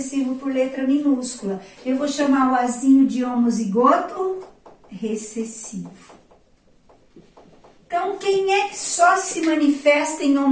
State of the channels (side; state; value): both; identical; correlation 1.00